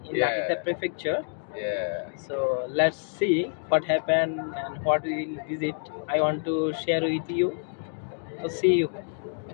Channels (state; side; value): silent; right; digital silence